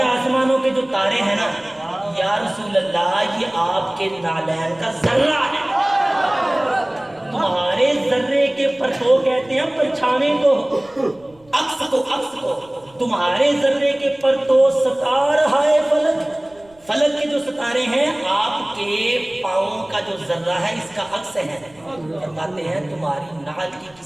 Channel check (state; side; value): noise; right; rumble, 29 dB below the sound